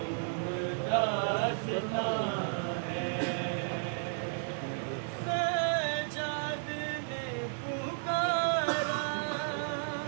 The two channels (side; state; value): left; silent; 56 dB below the other